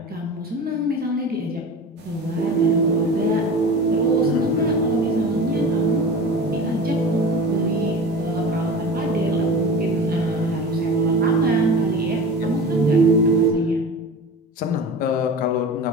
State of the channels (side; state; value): both; normal; correlation 0.34